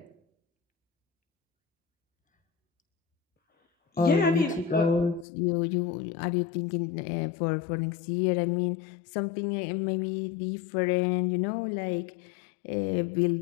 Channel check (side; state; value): right; drops out; at 5.2 s